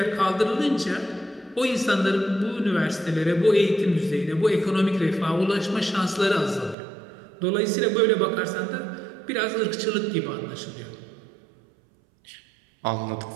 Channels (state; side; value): drops out; left; at 6.8 s